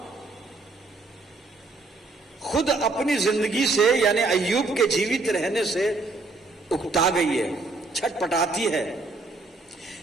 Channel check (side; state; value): left; quieter; 3.4 dB